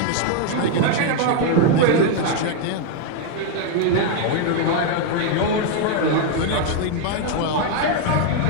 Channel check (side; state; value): both; different; correlation 0.00